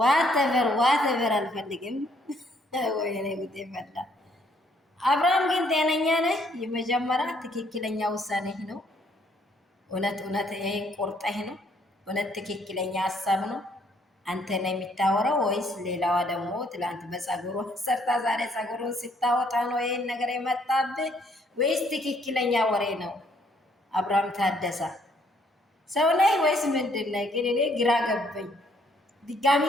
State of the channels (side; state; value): both; normal; correlation 0.67